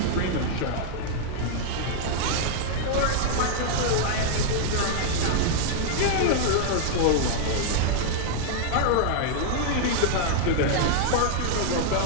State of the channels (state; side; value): different; both; correlation -0.01